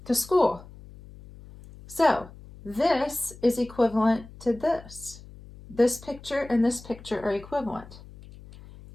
to school. So, this is equivalent to this. This picture and this picture are equivalent.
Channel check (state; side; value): noise; left; hum, 19 dB below the sound